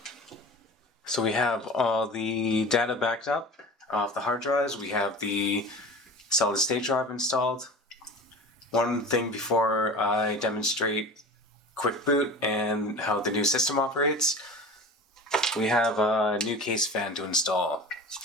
So we have all the data backed up off the hard drives. We have the solid state drive installed. One thing before I demonstrate quick boot and how the new system operates, we have a new case fan to install.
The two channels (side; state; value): both; normal; correlation 0.36